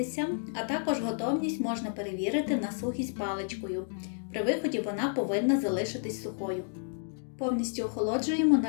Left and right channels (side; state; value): right; silent; digital silence